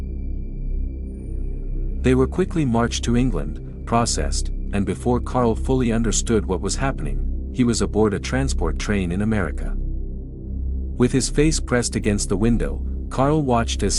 They were quickly marched to England, processed, and before Karl fully understood what was happening, he was aboard a transport train in America. With his face pressed against the window, Karl watched as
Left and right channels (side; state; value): both; identical; correlation 1.00